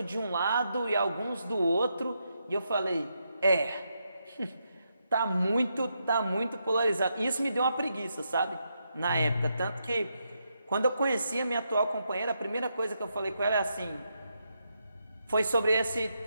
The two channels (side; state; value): both; inverted; correlation -0.82